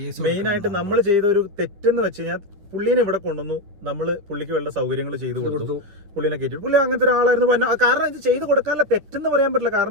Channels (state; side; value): late; left; 10 ms